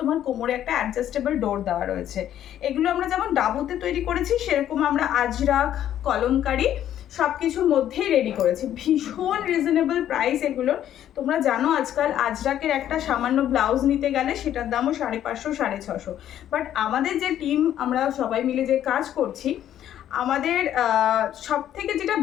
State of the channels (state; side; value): quieter; right; 11.1 dB